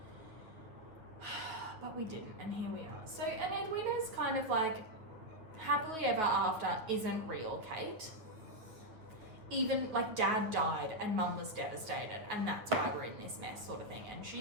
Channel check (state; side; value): late; left; 9.1 ms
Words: But we didn't, and here we are. So, and Edwina's kind of like, happily ever after isn't real, Kate. Even, like, dad died and mum was devastated, and that's why we're in this mess, sort of thing. And